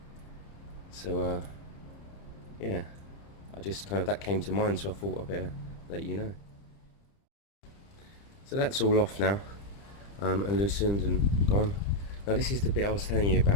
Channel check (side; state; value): right; late; 30 ms